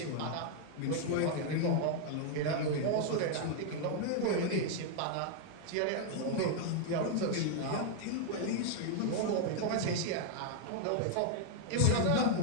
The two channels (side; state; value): both; different; correlation 0.00